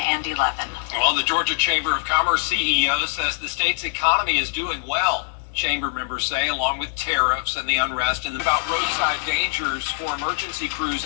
and 11. Well, the Georgia Chamber of Commerce CEO says the state's economy is doing well. Chamber members say, along with tariffs and the unrest, and about roadside dangers for emergency crews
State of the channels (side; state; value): right; silent; digital silence